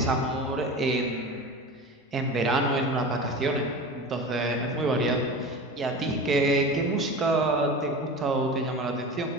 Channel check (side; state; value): both; normal; correlation 0.31